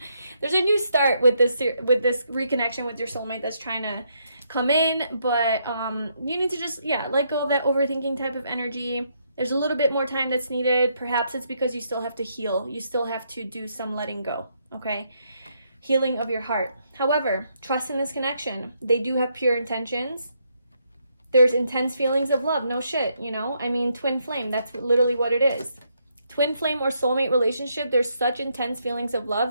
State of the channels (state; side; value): inverted; both; correlation -0.76